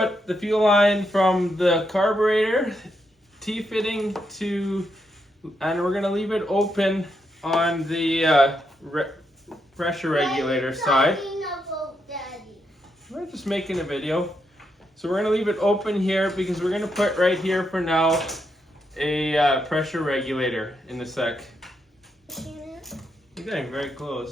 the fuel line from the carburetor T-fitting to, and we're going to leave it open on the pressure regulator side. We're just making a video. So we're going to leave it open here because we're going to put right here for now a pressure regulator in the sec. You're getting very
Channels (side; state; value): both; normal; correlation 0.81